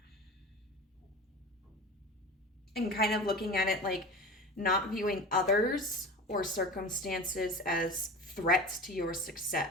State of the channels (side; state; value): both; normal; correlation 0.33